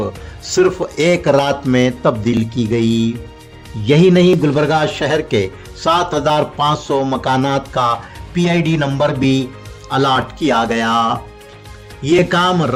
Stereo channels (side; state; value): both; identical; correlation 1.00